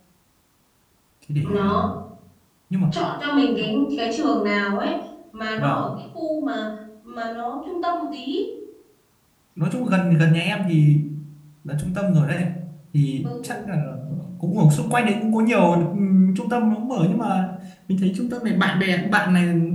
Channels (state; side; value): identical; both; correlation 1.00